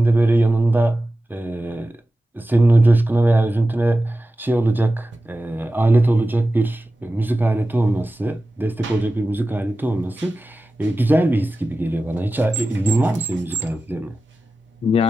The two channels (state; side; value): normal; both; correlation 0.94